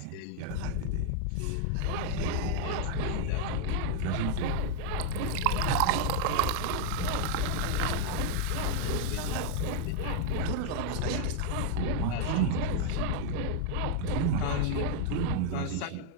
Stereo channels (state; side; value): different; both; correlation 0.00